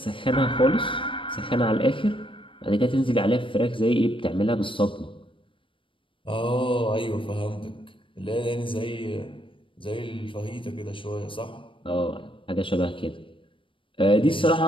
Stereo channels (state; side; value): late; right; 0.25 ms